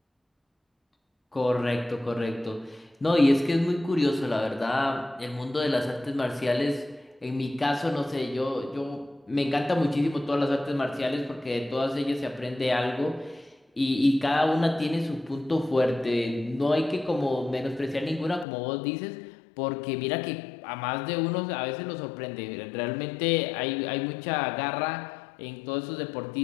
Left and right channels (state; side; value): drops out; right; at 18.4 s